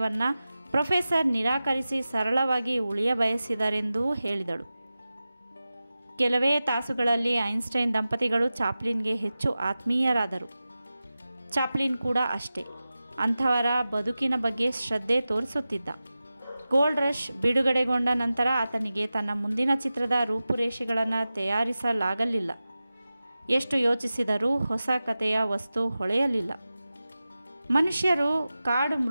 ಪ್ರೊಫೆಸರ್ ನಿರಾಕರಿಸಿ ಸರಳವಾಗಿ ಉಳಿಯ ಬಯಸಿದರೆಂದೂ ಹೇಳಿದಳು. ಕೆಲವೇ ತಾಸುಗಳಲ್ಲಿ ಐನ್ಸ್ಟೈನ್ ದಂಪತಿಗಳು ಚಾಪ್ಲಿನ್ಗೆ ಹೆಚ್ಚು ಆತ್ಮೀಯರಾದರು. ಚಾಪ್ಲಿನ್ ಕೂಡ ಅಷ್ಟೇ. ಅಂಥವರ ಬದುಕಿನ ಬಗ್ಗೆ ಶ್ರದ್ಧೆ ತೋರಿಸುತ್ತಿದ್ದ. ಗೋಲ್ಡ್ ರಶ್ ಬಿಡುಗಡೆಗೊಂಡ ನಂತರ ಆತನಿಗೆ ತನ್ನ ಮುಂದಿನ ಚಿತ್ರದ ರೂಪುರೇಷೆಗಳನ್ನು ತಯಾರಿಸಲಾಗಲಿಲ್ಲ. ಎಷ್ಟು ಯೋಚಿಸಿದರೂ ಹೊಸ ಕಥೆಯ ವಸ್ತು ಹೊಳೆಯಲಿಲ್ಲ. ಮನುಷ್ಯರು ಕಾಡು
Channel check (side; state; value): both; inverted; correlation -0.95